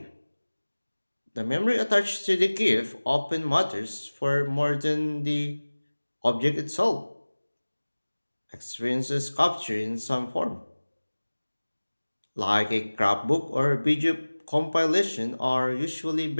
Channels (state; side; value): inverted; both; correlation -1.00